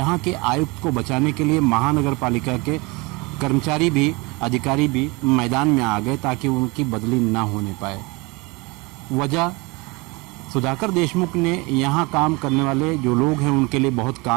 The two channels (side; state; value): left; quieter; 26.0 dB